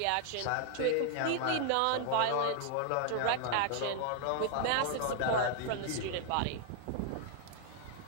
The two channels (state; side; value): different; both; correlation 0.00